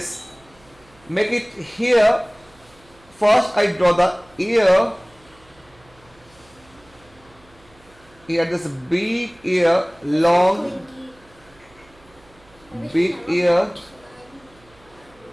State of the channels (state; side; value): noise; right; hum, 29 dB below the sound